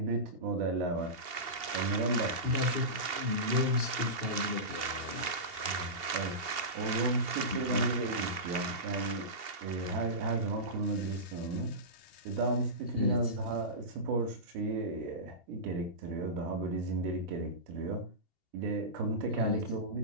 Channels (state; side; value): late; left; 2.8 ms